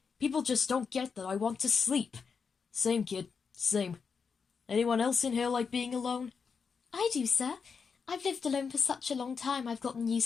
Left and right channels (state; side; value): quieter; right; 5.7 dB